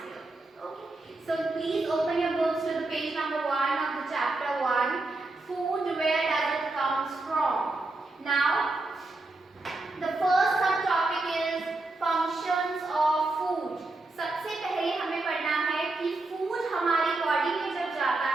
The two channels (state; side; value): quieter; left; 3.1 dB